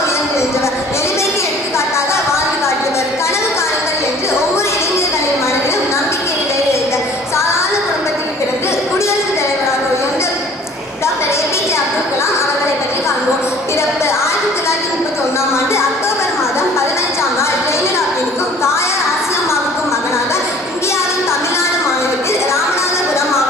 உயர்ந்து நின்றவர், எளிமைக்கு எடுத்துக்காட்டாக வாழ்ந்து காட்டியவர், கனவு காணுங்கள் என்று ஒவ்வொரு இளைஞர்களின் மனதிலும் நம்பிக்கை விளைவித்தார். சாதாரண குடும்பத்தில் பிறந்து குடியரசுத் தலைவராக உயர்ந்த டாக்டர் APJ அப்துல் கலாம் அவர்களை பற்றி காண்போம். பிறப்பு 1931ஆம் ஆண்டு அக்டோபர் மாதம் 15ஆம் நாள் ஜெயலலிதாவிற்கும் தாயார் ஆசியம்மாவுக்கும் மகனாக இந்தியாவின் தமிழ்நாடு மாநிலத்தில் ராமநாதபுரம்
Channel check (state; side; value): normal; both; correlation 0.50